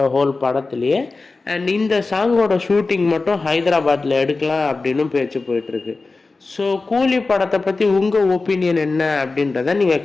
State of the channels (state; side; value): quieter; right; 3.7 dB